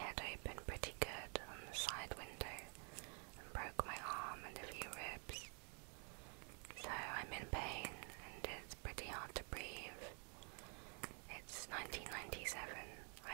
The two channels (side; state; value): left; quieter; 39.1 dB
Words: open pretty good on the side window and broke my arm and a few ribs. So I'm in pain and it's pretty hard to breathe. It's 1997.